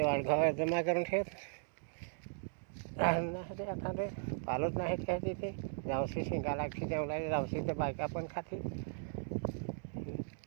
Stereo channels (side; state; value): left; silent; digital silence